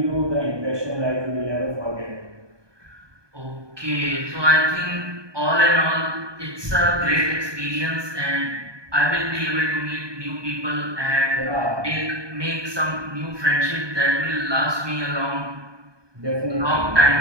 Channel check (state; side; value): late; left; 1.2 ms